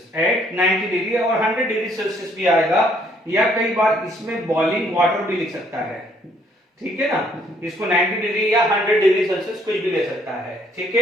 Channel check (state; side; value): normal; both; correlation 0.65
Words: at 90 degree और 100 डिग्री सेल्सियस भी आएगा, या कई बार इसमें बॉइलिंग वाटर भी लिख सकता है, ठीक है ना। इसको 90 डिग्री या 100 डिग्री सेल्सियस कुछ भी ले सकता है, ठीक